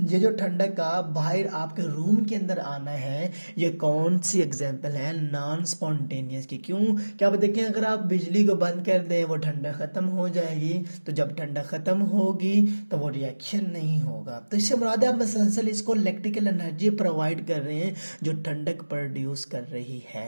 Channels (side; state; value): both; inverted; correlation -1.00